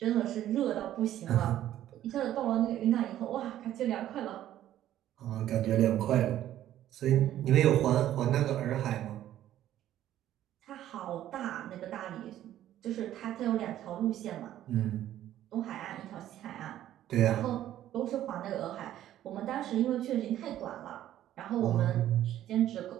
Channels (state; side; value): quieter; left; 12.4 dB